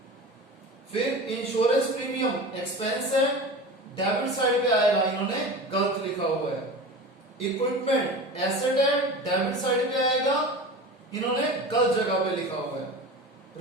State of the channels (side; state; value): both; normal; correlation 0.32